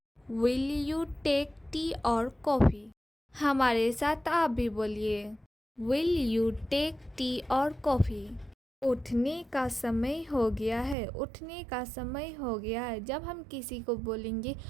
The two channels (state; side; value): drops out; left; at 11.0 s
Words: Will you take tea और कॉफ़ी? हमारे साथ आप भी बोलिए, विल यू टेक टी और कॉफ़ी? उठने का समय हो गया है, उठने का समय हो गया है। जब हम किसी को बोलेंगे